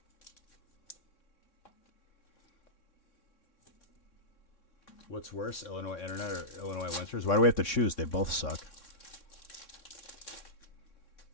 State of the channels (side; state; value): right; late; 3.6 ms